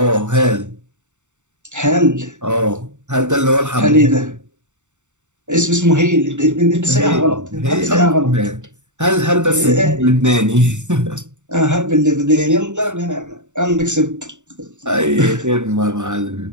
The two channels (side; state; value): left; late; 0.84 ms